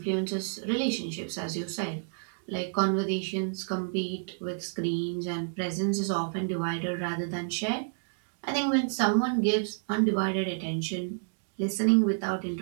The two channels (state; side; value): silent; left; digital silence